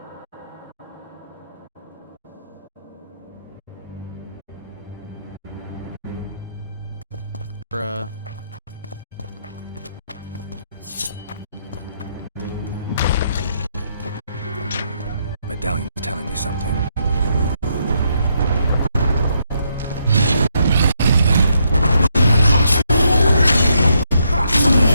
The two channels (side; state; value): both; inverted; correlation -0.77